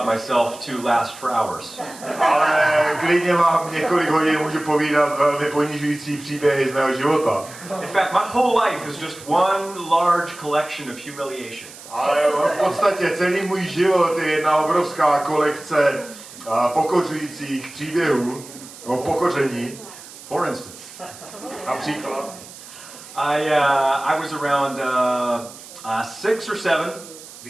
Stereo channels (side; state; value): right; noise; hiss, 17 dB below the sound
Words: myself to last for hours. Ale klidně vám několik hodin můžu povídat velmi ponižující příběhy z mého života. In fact, my whole life is just one large collection of humiliation. Ale v podstatě celý můj život je jedna obrovská kolekce pokořujících příběhů o pokoření. For instance, Například. I was around 6 or 7,